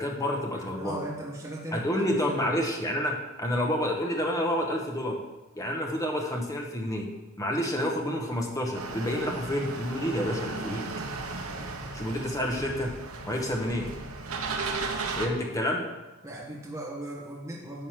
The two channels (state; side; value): normal; both; correlation 0.51